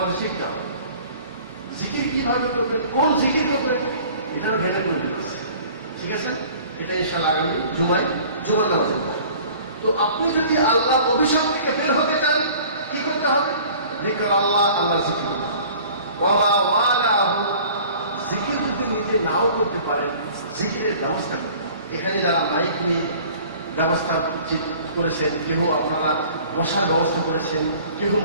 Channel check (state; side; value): inverted; both; correlation -0.48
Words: শিখতে হবে। জিকির কিভাবে করবেন, কোন জিকির করবেন, এখানে ভেঙে করে দিতেছে, ঠিক আছে? এটা ইনশাআল্লাহ আগামী জুমার নামাজে পড়ে। তো আপনি যদি আল্লাহর অভিশাপ থেকে বের হতে চান কি করতে হবে? যিকর আল্লাহ, আল্লাহর জিকির করতে হবে। ওয়া মা ওয়ালাহু, জিকির যদি নিজে নাও করতে পারেন জিকিরের ব্যবস্থা করতে হবে। এখানে যারা মাইক নিয়ে ব্যবস্থা করেছেন, কেউ আপনারা বসার ব্যবস্থা করেছেন, কেউ